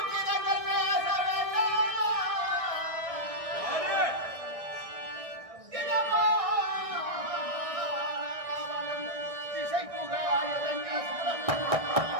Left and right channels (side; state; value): left; late; 1.6 ms